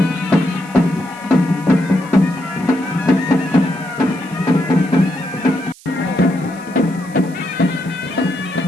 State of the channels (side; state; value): right; noise; hiss, 23 dB below the sound